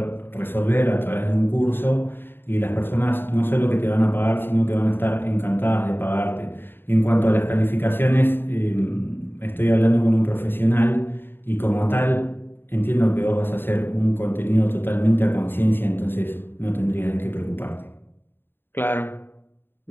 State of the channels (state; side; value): late; right; 0.10 ms